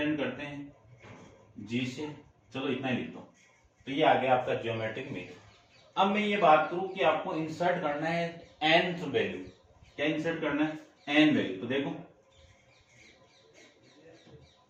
करते हैं जी से, चलो इतना ही लिख दो। तो ये आ गया आपका ज्योमेट्रिक मीन। अब मैं ये बात करूं कि आपको इंसर्ट करना है nth वैल्यू। क्या इंसर्ट करना है, n वैल्यू। तो देखो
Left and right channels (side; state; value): both; identical; correlation 1.00